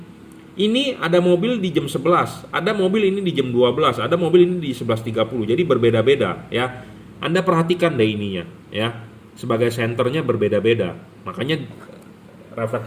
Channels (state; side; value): identical; both; correlation 1.00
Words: Ini ada mobil di jam 11, ada mobil ini di jam 12, ada mobil ini di 11.30. Jadi berbeda-beda, ya. Anda perhatikan deh ininya, ya. Sebagai senternya berbeda-beda. Makanya